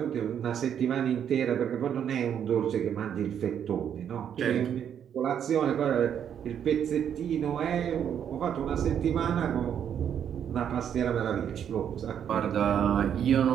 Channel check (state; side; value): quieter; left; 8.8 dB